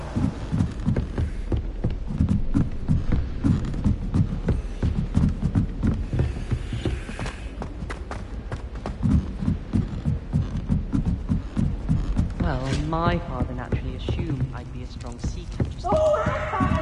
Well, my father naturally assumed I'd be a strong seeker.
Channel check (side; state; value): both; identical; correlation 1.00